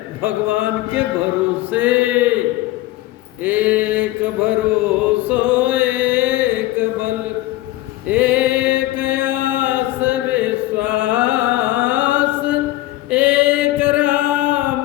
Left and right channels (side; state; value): right; quieter; 16.8 dB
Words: भगवान के भरोसे। एक भरोसो एक बल, एक आस विश्वास, एक राम